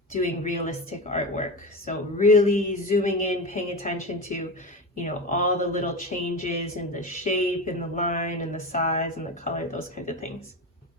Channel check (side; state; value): both; normal; correlation 0.23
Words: doing realistic artwork. So really zooming in, paying attention to, all the little changes in the shape and the line and the size and the color, those kinds of things.